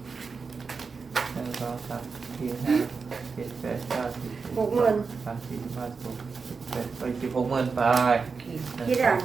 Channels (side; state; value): left; quieter; 4.9 dB